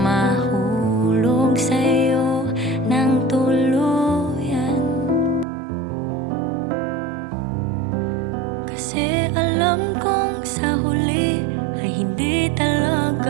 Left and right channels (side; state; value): left; drops out; at 5.5 s